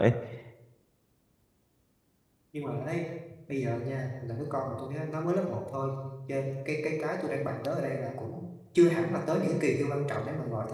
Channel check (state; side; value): identical; both; correlation 1.00